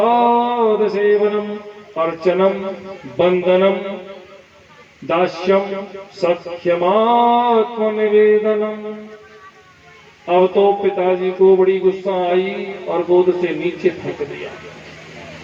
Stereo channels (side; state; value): both; identical; correlation 1.00